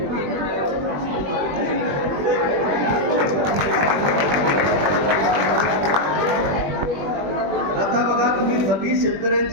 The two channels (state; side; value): late; left; 21 ms